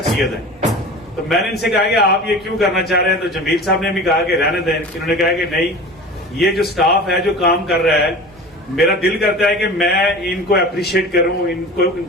ہے. تو میں نے ان سے کہا کہ آپ یہ کیوں کرنا چاہ رہے ہیں, تو جمیل صاحب نے بھی کہا کہ رہنے دیں. انہوں نے کہا کہ نہیں, یہ جو سٹاف ہے جو کام کر رہا ہے میرا دل کرتا ہے کہ میں ان کو اپریشیٹ کروں, ان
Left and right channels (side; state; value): both; normal; correlation 0.36